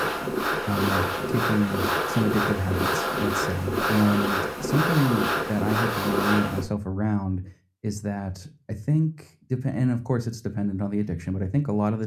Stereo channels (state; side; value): identical; both; correlation 1.00